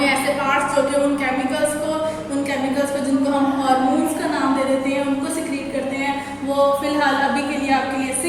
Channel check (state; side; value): identical; both; correlation 1.00